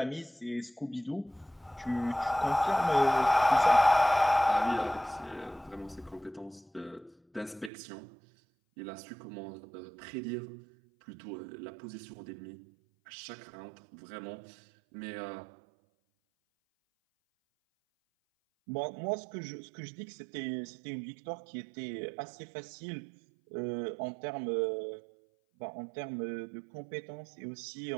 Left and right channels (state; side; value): drops out; left; at 7.7 s